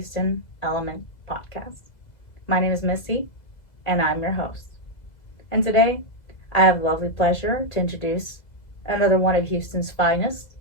Element Podcast. My name is Missy, and I'm your host. And today, I have the lovely pleasure to introduce another one of Houston's finest,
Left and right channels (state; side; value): late; right; 2.0 ms